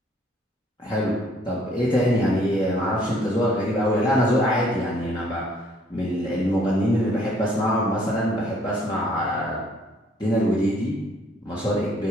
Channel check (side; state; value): both; normal; correlation 0.62